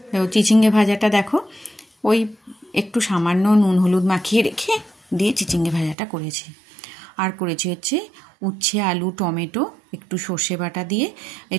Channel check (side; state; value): left; drops out; at 6.0 s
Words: চিচিঙ্গে ভাজাটা দেখো, ওই একটু সামান্য নুন হলুদ মাখিয়ে রেখে দিয়ে চিচিঙ্গে ভাজাটা করেছি। আর করেছি হচ্ছে উচ্ছে, আলু, টমেটো, একটু সর্ষে বাটা দিয়ে,